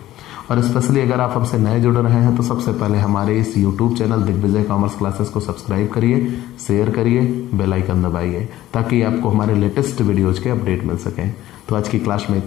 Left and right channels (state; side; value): quieter; right; 14.6 dB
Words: और स्पेशली अगर आप हमसे नए जुड़ रहे हैं तो सबसे पहले हमारे इस YouTube channel Digvijay commerce classes को सब्सक्राइब करिए, शेयर करिए, बेल आइकन दबाइए, ताकि आपको हमारे लेटेस्ट वीडियोज के अपडेट मिल सकें। तो आज की क्लास में